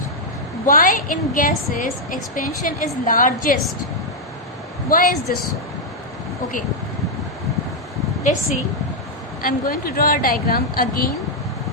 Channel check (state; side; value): normal; both; correlation -0.02